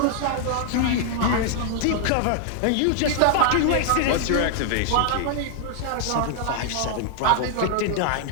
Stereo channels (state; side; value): different; both; correlation 0.00